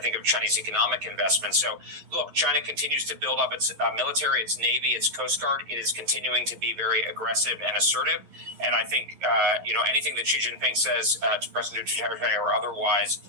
of Chinese economic investment. So, look, China continues to build up its military, its Navy, its Coast Guard. It is continuing to be very aggressive and assertive. And I think, anything that Xi Jinping says to President Duterte or otherwise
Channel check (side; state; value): left; late; 11 ms